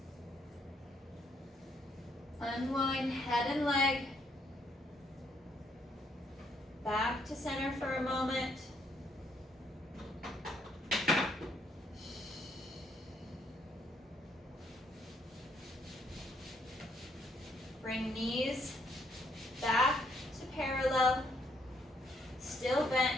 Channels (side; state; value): both; normal; correlation 0.72